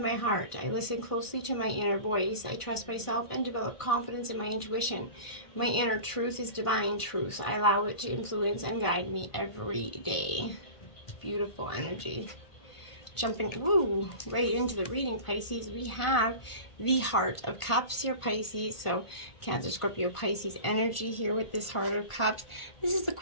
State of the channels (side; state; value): right; late; 1.5 ms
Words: my heart. I listen closely to my inner voice. I trust myself and develop confidence in my intuition. My inner truth is divine truth. I allow it to influence and guide me every day. Beautiful energy. Jumping right into the reading, Pisces, we have the Heart of Cups here, Pisces. So Cancer, Scorpio, Pisces energy here with this Heart of Cups. This is the